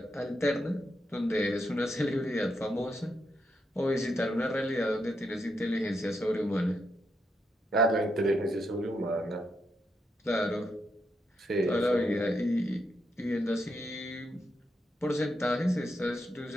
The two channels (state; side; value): normal; both; correlation 0.81